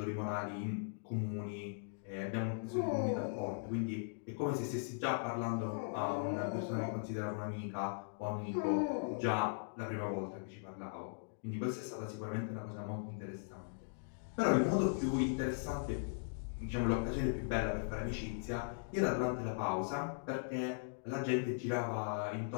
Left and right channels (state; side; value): silent; right; digital silence